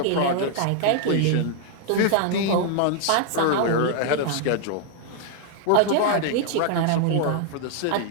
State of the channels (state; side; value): different; both; correlation 0.00